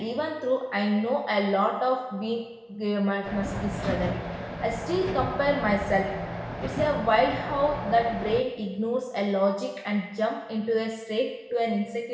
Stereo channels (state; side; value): identical; both; correlation 1.00